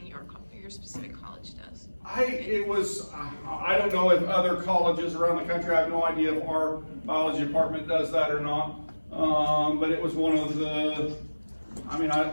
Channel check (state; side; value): inverted; both; correlation -1.00